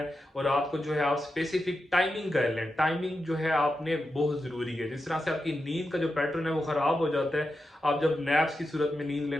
और रात को जो है आप स्पेसिफिक टाइमिंग कर लें। टाइमिंग जो है आपने बहुत जरूरी है, जिस तरह से आपकी नींद का जो पैटर्न है वो खराब हो जाता है, आप जब नैप्स की सूरत में नींद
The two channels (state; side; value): normal; both; correlation 0.89